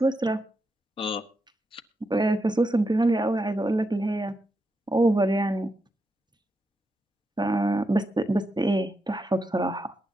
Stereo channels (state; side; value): normal; both; correlation 0.84